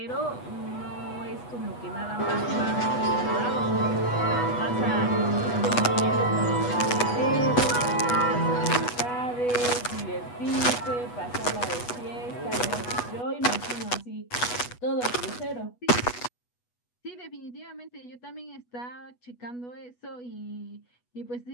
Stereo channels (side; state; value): right; late; 8.2 ms